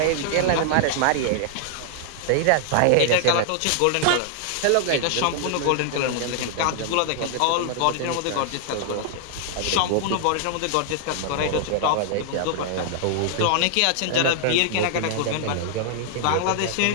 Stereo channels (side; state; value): both; different; correlation -0.01